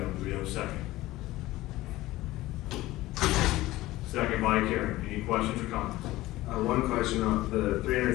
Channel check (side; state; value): right; quieter; 17.4 dB